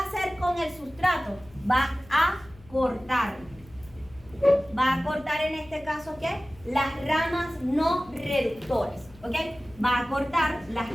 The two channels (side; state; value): left; noise; hum, 23 dB below the sound